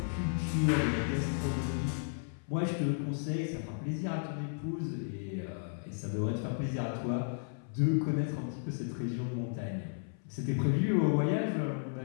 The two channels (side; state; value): right; silent; 55 dB below the other